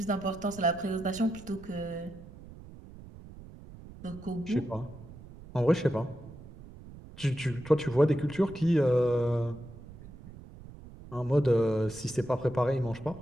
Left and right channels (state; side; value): noise; right; rumble, 17 dB below the sound